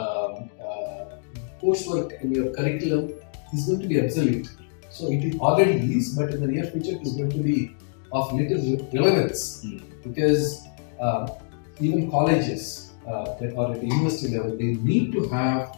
coursework in your curriculum is going to be obsolete. So it already is, but in the near future it is going to be of little relevance because even colleges that are at the university level, they need to have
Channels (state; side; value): silent; right; digital silence